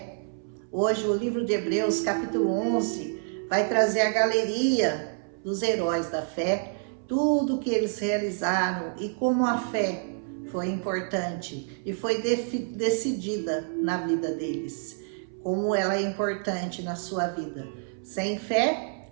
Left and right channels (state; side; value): silent; left; 60 dB below the other